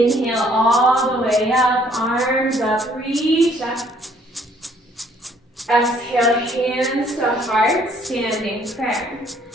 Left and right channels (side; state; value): both; normal; correlation 0.62